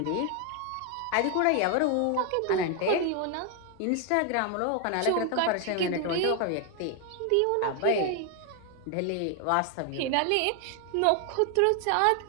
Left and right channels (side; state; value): both; different; correlation 0.00